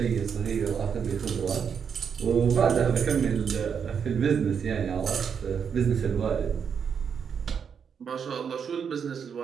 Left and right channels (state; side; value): quieter; left; 7.0 dB